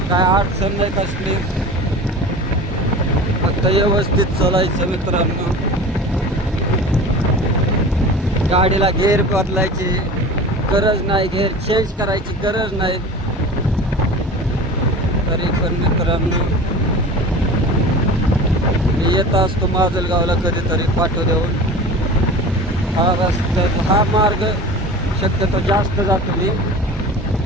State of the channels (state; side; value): normal; both; correlation 0.36